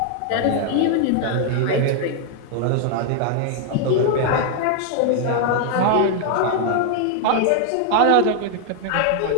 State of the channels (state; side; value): different; both; correlation 0.00